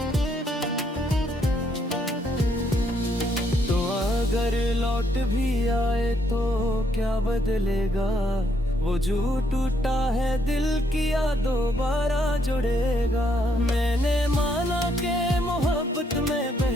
तो अगर लौट भी आए तो क्या बदलेगा, वो जो टूटा है दिल किया दोबारा जुड़ेगा। मैंने माना कि मोहब्बत में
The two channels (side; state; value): both; normal; correlation 0.72